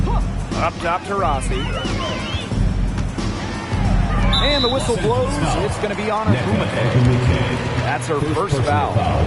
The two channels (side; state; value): both; identical; correlation 1.00